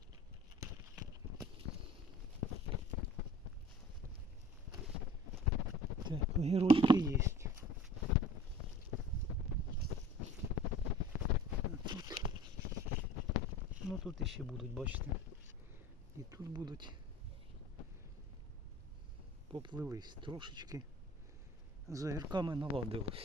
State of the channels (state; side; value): normal; both; correlation 0.45